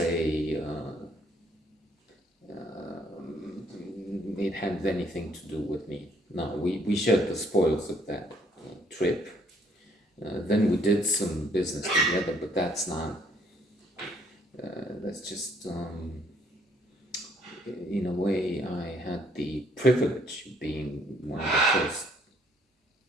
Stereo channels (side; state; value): both; normal; correlation 0.65